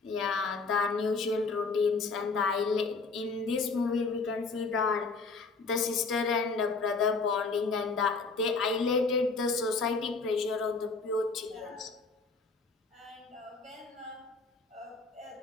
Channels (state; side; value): quieter; right; 4.1 dB